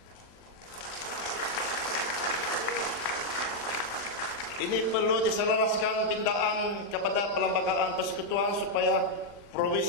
Ini perlu diselaraskan pindaan kepada Perlembagaan Persekutuan supaya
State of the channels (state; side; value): late; right; 40 ms